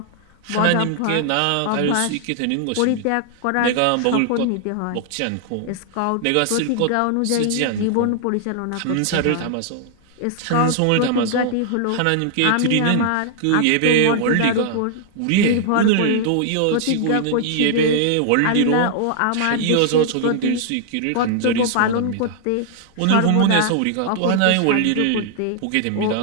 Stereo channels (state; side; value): different; both; correlation 0.00